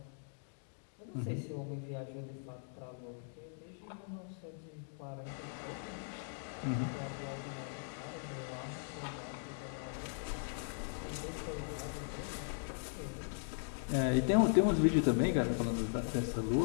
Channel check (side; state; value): right; silent; digital silence